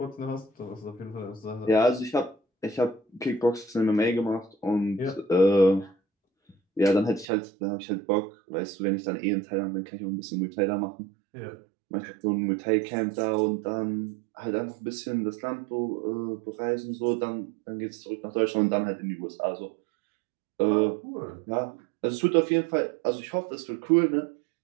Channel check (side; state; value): left; drops out; at 7.2 s